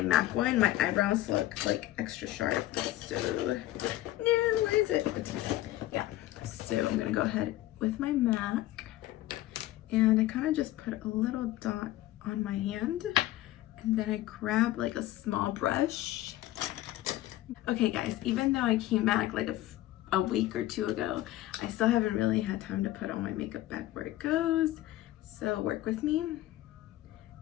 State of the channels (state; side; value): quieter; right; 15.4 dB